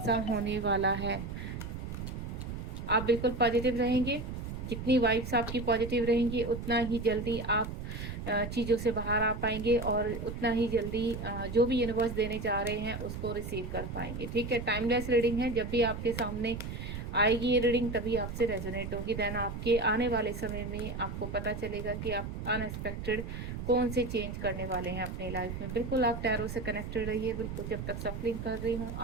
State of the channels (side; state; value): right; noise; rumble, 6 dB below the sound